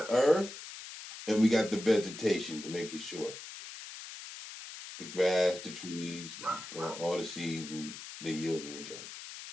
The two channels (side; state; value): left; noise; hiss, 12 dB below the sound